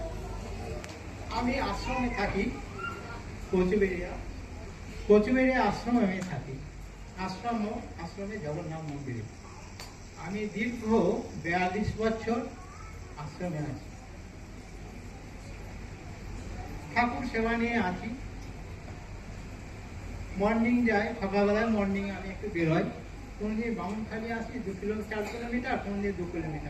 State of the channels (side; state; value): both; identical; correlation 1.00